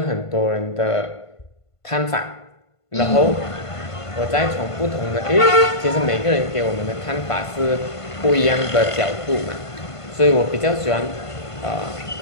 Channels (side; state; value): right; late; 1.5 ms